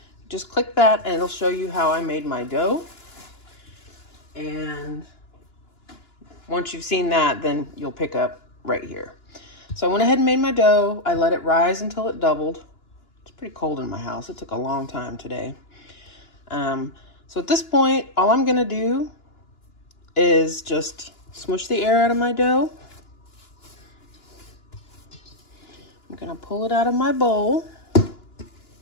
Just click that and it'll show you how I made my dough. And once you've seen that, then you'll pick up right here. So I went ahead and made my dough. I let it rise until it doubled. It's pretty cold in my house. It took a long time today. So at this point, all I'm gonna do is just smush the air out of my dough. I'm gonna pull it out of my bowl.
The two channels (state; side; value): late; right; 2.9 ms